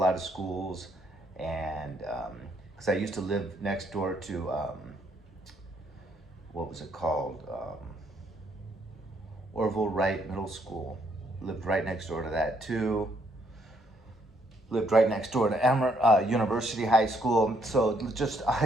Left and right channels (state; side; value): normal; both; correlation 0.70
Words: of schools, and because I used to live next door to what was it called? Orville Wright Middle School. Lived right next door to that too. Lived right next door to University High School. So